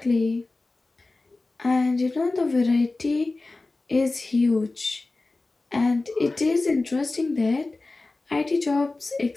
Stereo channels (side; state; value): right; quieter; 3.3 dB